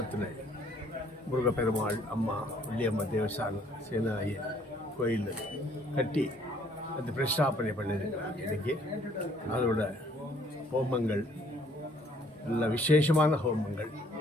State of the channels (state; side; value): normal; both; correlation 0.62